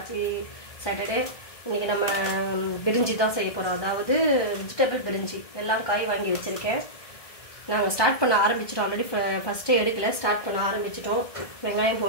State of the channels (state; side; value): late; right; 1.7 ms